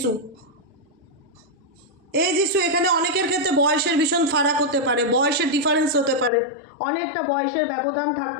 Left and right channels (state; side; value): drops out; right; at 6.3 s